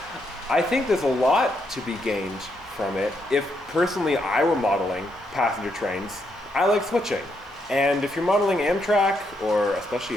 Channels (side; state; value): both; normal; correlation 0.78